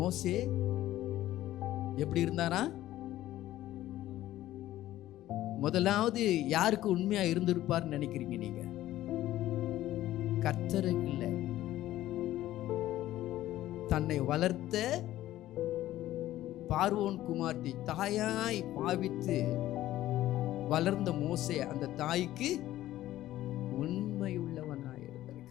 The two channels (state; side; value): quieter; right; 14.4 dB